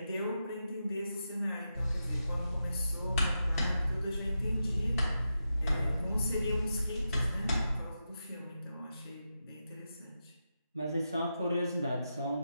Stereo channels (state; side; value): inverted; both; correlation -0.88